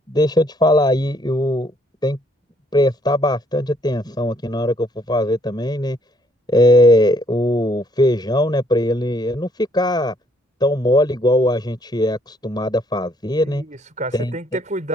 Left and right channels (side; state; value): both; normal; correlation 0.66